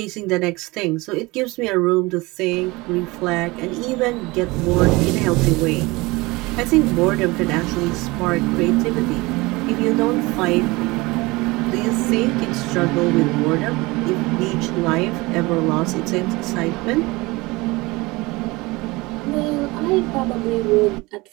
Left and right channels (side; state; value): left; quieter; 22.8 dB